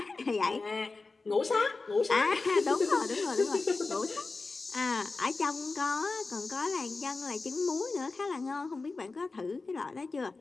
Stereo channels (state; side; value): quieter; right; 3.8 dB